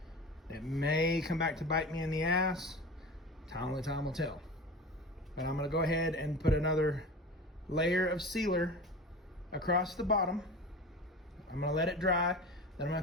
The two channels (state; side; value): normal; both; correlation 0.33